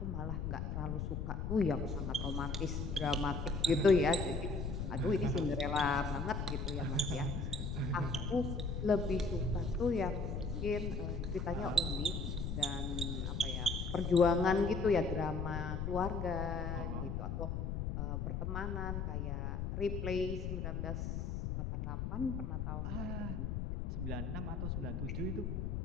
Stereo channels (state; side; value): noise; left; rumble, 2 dB below the sound